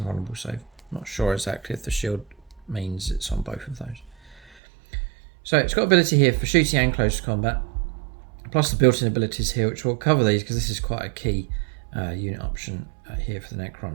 save. Not sure exactly if the shield means it's on both of those. So it's got ability here for shooting and close combat, plus the built-in abilities here, which will cover these because this is quite a key unit option here for the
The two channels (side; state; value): left; drops out; at 4.5 s